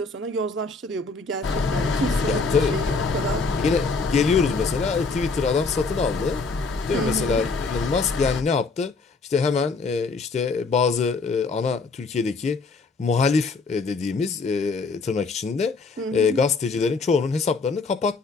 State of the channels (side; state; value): right; quieter; 4.1 dB